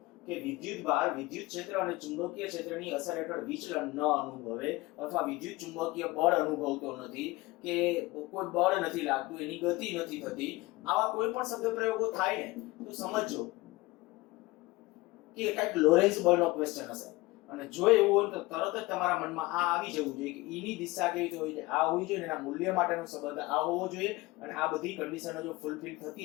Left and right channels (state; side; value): quieter; right; 21.0 dB